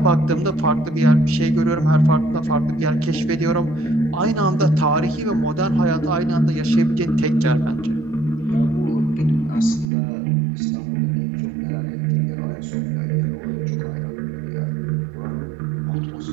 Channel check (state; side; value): drops out; left; at 9.9 s